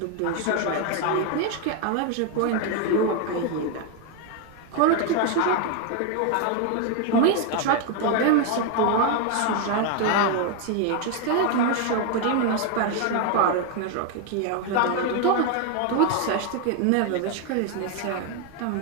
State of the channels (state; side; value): different; both; correlation 0.01